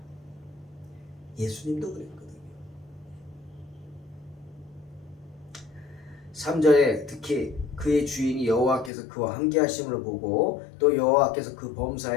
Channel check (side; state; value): right; drops out; at 8.9 s